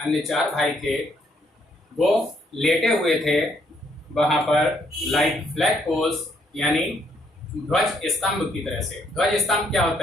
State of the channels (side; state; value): both; normal; correlation 0.70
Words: 4 भाई थे, वो लेटे हुए थे वहां पर, लाइक फ्लैग पोल्स, यानी ध्वज स्तंभ की तरह से। ध्वज स्तंभ क्या